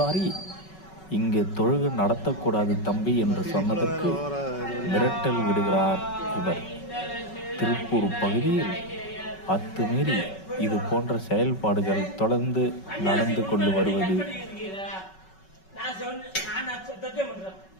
இங்கு தொழுகை நடத்தக்கூடாது தம்பி என்று சொன்னதற்கு மிரட்டல் விடுகிறார் இவர். திருப்பூர் பகுதியில் அத்துமீறி இது போன்ற செயல்பாடுகள் தொடர்ந்து நடந்து கொண்டு வருவது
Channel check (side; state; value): right; late; 5.3 ms